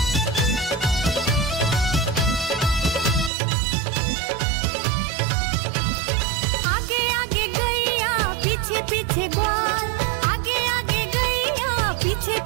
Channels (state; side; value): drops out; left; at 3.3 s